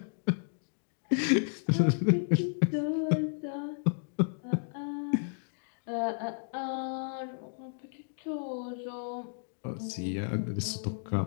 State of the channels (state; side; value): silent; right; digital silence